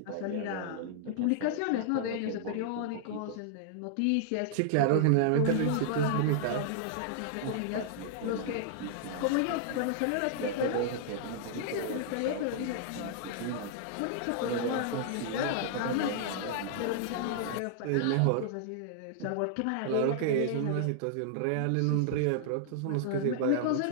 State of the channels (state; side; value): different; both; correlation -0.01